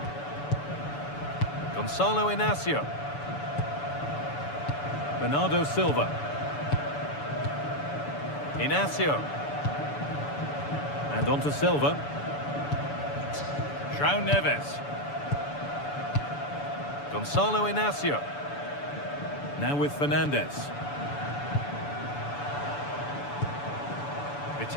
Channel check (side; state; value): right; late; 6.9 ms